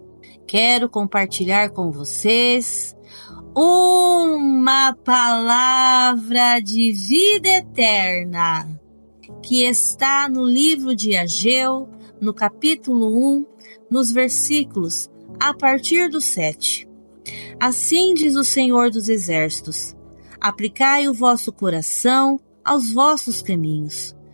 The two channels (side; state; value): both; inverted; correlation -1.00